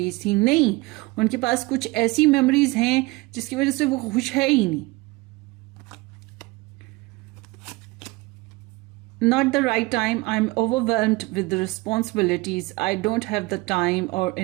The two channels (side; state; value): left; quieter; 23.1 dB